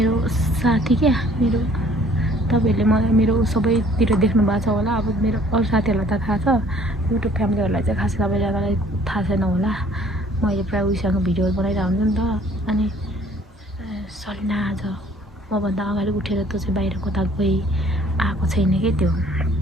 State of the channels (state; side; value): normal; both; correlation 0.57